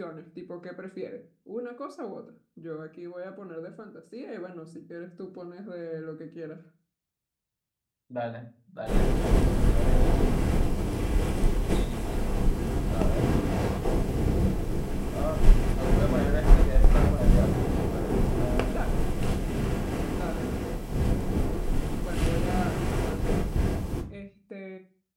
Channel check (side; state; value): both; identical; correlation 1.00